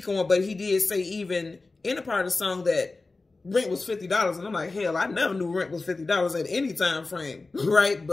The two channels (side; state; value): right; quieter; 3.5 dB